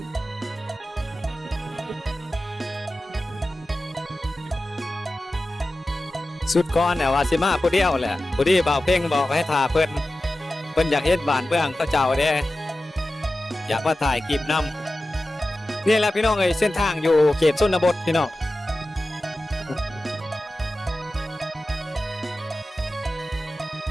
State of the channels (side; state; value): both; normal; correlation 0.94